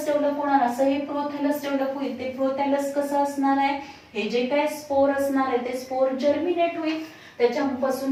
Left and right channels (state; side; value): identical; both; correlation 1.00